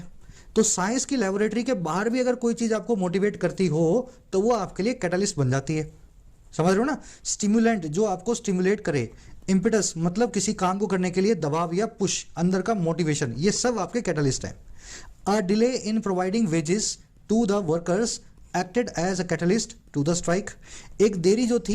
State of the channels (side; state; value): both; identical; correlation 1.00